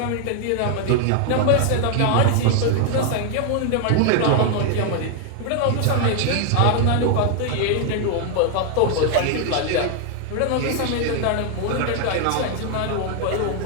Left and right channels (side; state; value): both; different; correlation 0.00